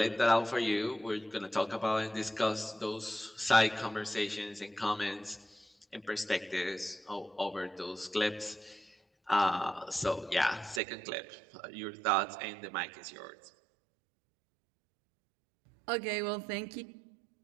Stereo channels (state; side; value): drops out; left; at 10.8 s